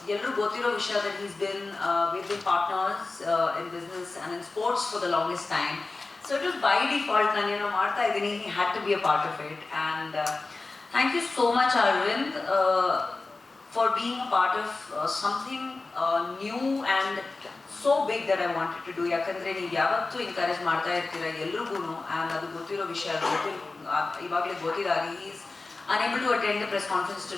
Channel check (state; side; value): quieter; right; 3.6 dB